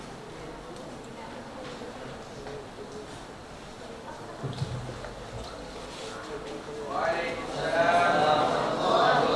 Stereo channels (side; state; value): both; identical; correlation 1.00